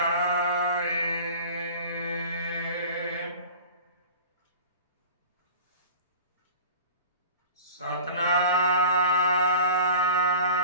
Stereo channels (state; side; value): inverted; both; correlation -0.40